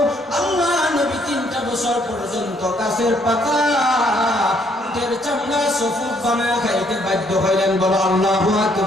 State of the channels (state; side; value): normal; both; correlation 0.68